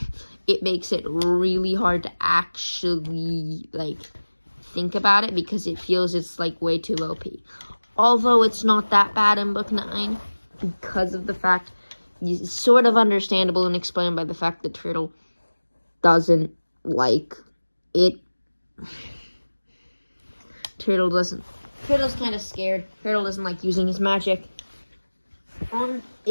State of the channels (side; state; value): both; inverted; correlation -1.00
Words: it makes it really hard to actually, think about it because it feels it's, way too OP. Although it's not that bad in book 9 because of the fact, it's sort of understandable and explained by the fact that Turtle doesn't like it. Turtle's kind of scared. Turtle doesn't like using his magic.